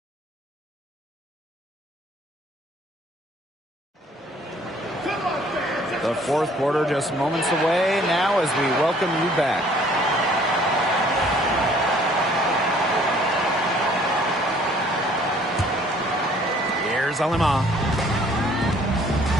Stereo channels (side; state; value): both; normal; correlation 0.58